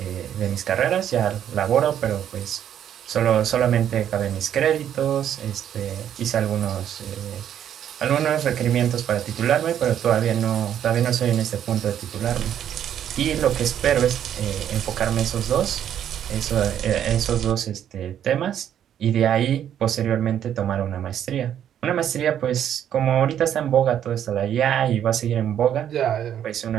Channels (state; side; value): quieter; left; 9.9 dB